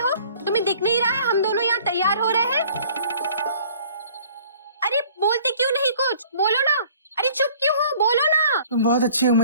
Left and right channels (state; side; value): inverted; both; correlation -0.53